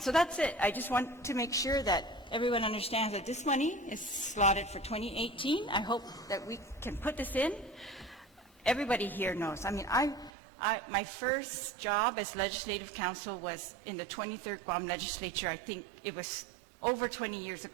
that's it. I just want to make sure that everyone understands that this money is slotted for 2018. I hope that we can put this in. Everybody here knows. I mean, my first job as legislative counsel was in the 23rd Guam Legislature. I think it was over 20 years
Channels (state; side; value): drops out; left; at 10.3 s